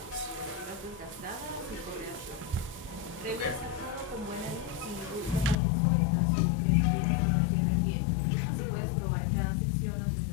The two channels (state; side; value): drops out; right; at 5.6 s